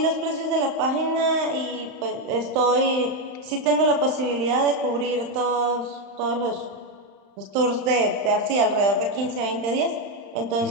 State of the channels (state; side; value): late; left; 35 ms